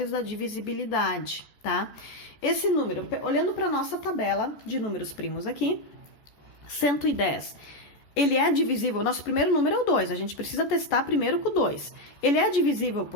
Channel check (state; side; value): late; right; 14 ms